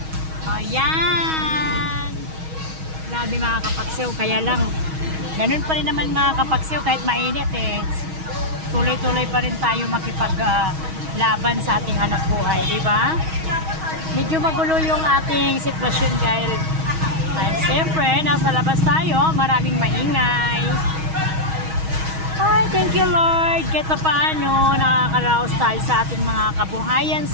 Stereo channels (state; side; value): late; left; 6.3 ms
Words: Ayan. Grabe mga kapagsew. Kaya lang, ganun pa rin naman mga kapagsew kahit mainit eh. Tuloy-tuloy pa rin tayo makipaglaban sa ating hanap buhay, di ba? Medyo magulo yung ating sitwasyon dahil siyempre, nasa labas tayo, maraming maingay. Ay, thank you Lord. Kahit pa paano, nakakaraos tayo sa ating mga kabuhayan